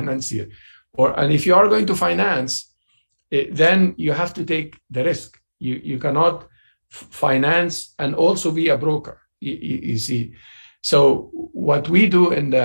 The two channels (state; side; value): inverted; both; correlation -1.00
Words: And if you are going to finance, then you have to take the risk. You cannot finance and also be a broker, you see. So what we do in